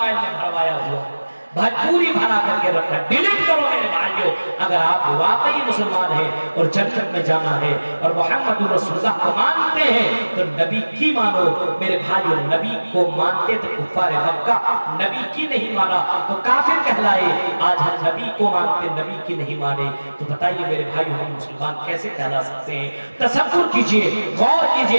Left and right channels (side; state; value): both; inverted; correlation -1.00